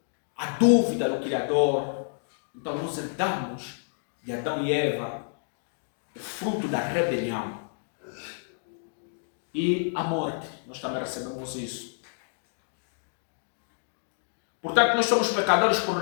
a dúvida do Criador. Então nós herdamos de Adão e Eva o fruto da rebelião. E a morte, nós também recebemos isso. Portanto, nós somos pecadores por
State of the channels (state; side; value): silent; right; digital silence